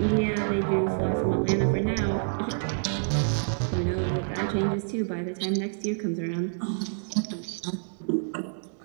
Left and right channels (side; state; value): left; silent; digital silence